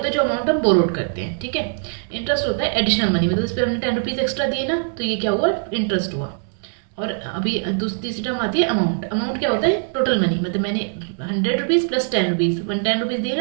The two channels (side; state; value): left; silent; 65 dB below the other